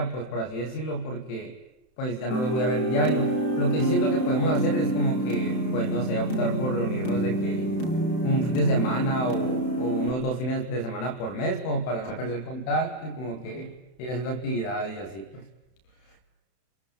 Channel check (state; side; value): late; right; 31 ms